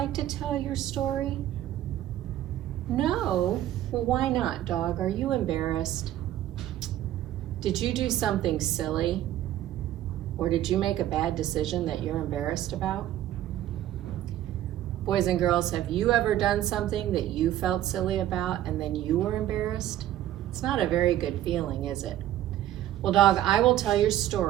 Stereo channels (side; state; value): left; quieter; 12.8 dB